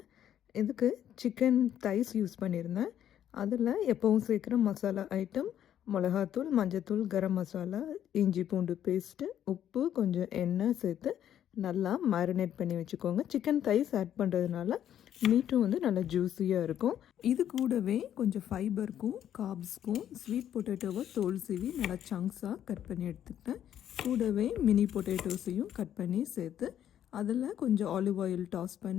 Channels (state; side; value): quieter; right; 10.5 dB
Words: இதுக்கு சிக்கன் தைஸ் யூஸ் பண்ணியிருந்தேன். அதில் எப்பவும் சேர்க்குற மசாலா ஐட்டம் மிளகாத்தூள், மஞ்சத்தூள், கரம் மசாலா, இஞ்சி பூண்டு பேஸ்ட்டு, உப்பு, கொஞ்சம் எண்ணெய் சேர்த்து நல்லா மேரினேட் பண்ணி வச்சுக்கோங்க. சிக்கன் தைஸ் ஆட் பண்ணுறதுனால மீட்டும் வந்து நல்லா ஜூஸியாக இருக்கும். இது கூடவே கொஞ்சம் ஃபைபருக்கும் கார்ப்ஸ்க்கும் ஸ்வீட் பொட்டேட்டோவை தோல் சீவி நல்லா சங்க்ஸாக கட் பண்ணி எடுத்துக்கிட்டேன். கூடவே மினி பொட்டேட்டோஸையும் கட் பண்ணி சேர்த்து அதில் கொஞ்சம் ஆலிவ் ஆயில் டாஸ்